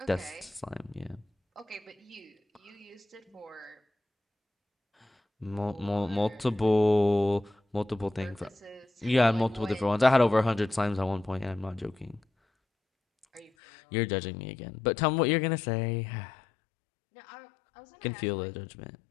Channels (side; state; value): right; drops out; at 13.5 s